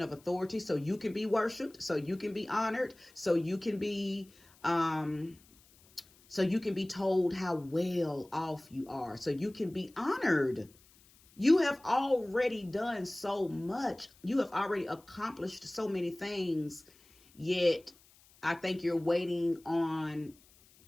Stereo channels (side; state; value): left; noise; hiss, 28 dB below the sound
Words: of authority so you can be worshiped, so you can be honored, so you can be told how well off you are, so you can be honored. You have already done so much. You have already accomplished so many things, yet I think you're waiting on